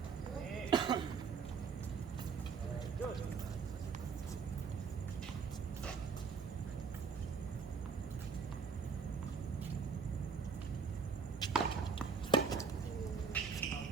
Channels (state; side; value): quieter; left; 5.3 dB